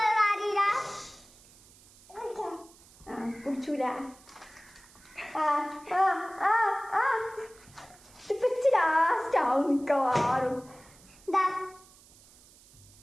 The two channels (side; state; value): right; noise; hiss, 25 dB below the sound